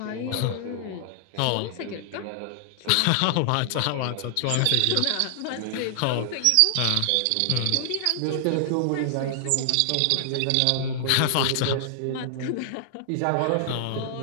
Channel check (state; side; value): different; both; correlation -0.01